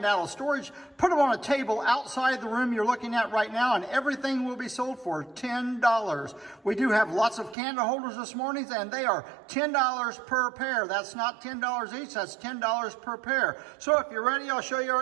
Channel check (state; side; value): drops out; left; at 7.6 s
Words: out of storage, put them on a table outside the room you're looking at right now, and everything will be sold for $10. We do have lots of candle holders this morning, and they are $10 per pair. That's not $10 each, that's $10 per pair. So if you're ready, I'll show you